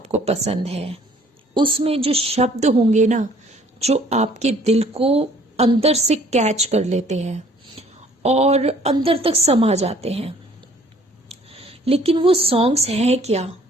पसंद है उसमें जो शब्द होंगे ना, जो आपके दिल को अंदर से कैच कर लेते हैं और अंदर तक समा जाते हैं। लेकिन वो सॉन्ग्स हैं क्या?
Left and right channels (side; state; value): both; normal; correlation 0.56